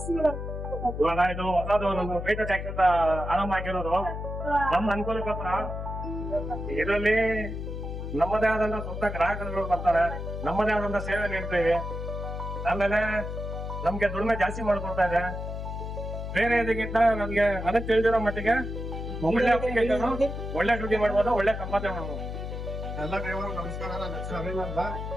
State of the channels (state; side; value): noise; left; hum, 6 dB below the sound